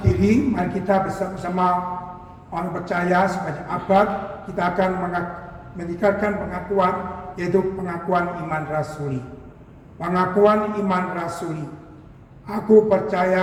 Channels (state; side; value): identical; both; correlation 1.00